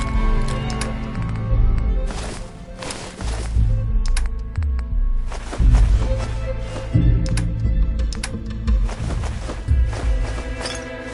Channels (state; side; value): identical; both; correlation 1.00